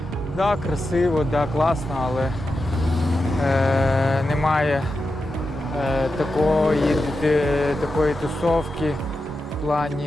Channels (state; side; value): normal; both; correlation 0.89